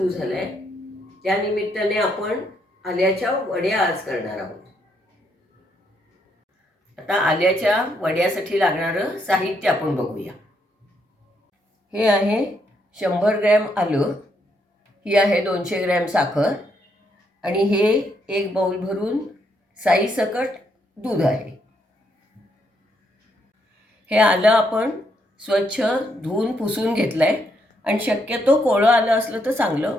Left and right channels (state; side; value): normal; both; correlation 0.75